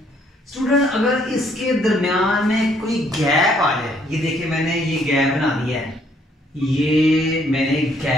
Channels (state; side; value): normal; both; correlation 0.66